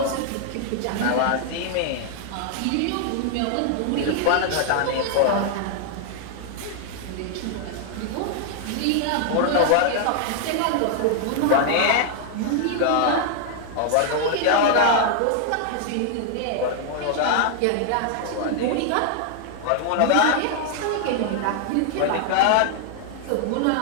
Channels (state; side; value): different; both; correlation 0.00